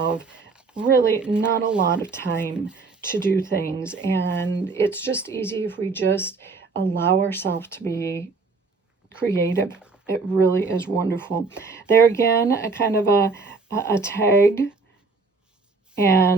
really not a lot of time to do things, and it's just easy if we just allow ourselves to be creative. It really is wonderful. There again, a kind of a tag,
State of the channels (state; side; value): quieter; left; 4.2 dB